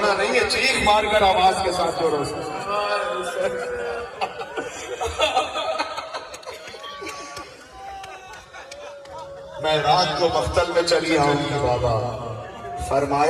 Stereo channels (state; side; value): identical; both; correlation 1.00